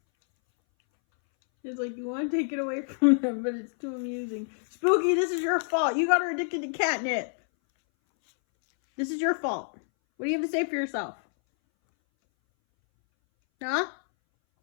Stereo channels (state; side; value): silent; right; 60 dB below the other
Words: It's like, you want to take it away from them, but it's too amusing. Spooky, this is your fault. You got her addicted to catnip. This is your fault. What do you have to say for yourself? Huh?